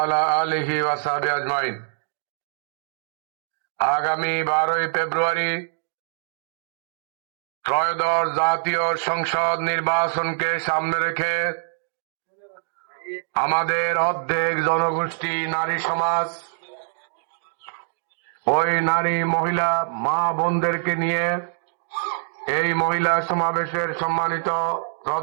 آله وصحبه أجمعين। আগামী 12 ফেব্রুয়ারি ত্রয়োদশ জাতীয় সংসদ নির্বাচনকে সামনে রেখে আমাদের অর্ধেক জনগোষ্ঠী নারী সমাজ ওই নারী মহিলা মা বোনদেরকে নিয়ে এই মহিলা সমাবেশের সম্মানিত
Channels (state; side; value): silent; left; digital silence